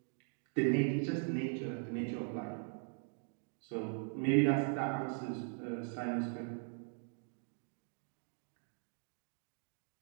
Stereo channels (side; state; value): left; silent; 51 dB below the other